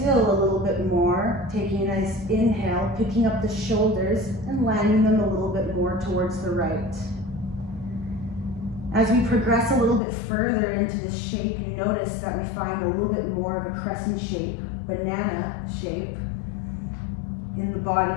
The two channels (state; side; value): drops out; right; at 10.0 s